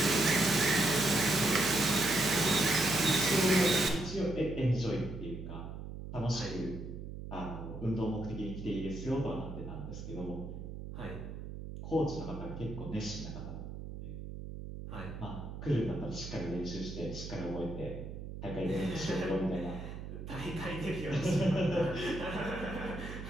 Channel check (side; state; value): right; noise; hum, 9 dB below the sound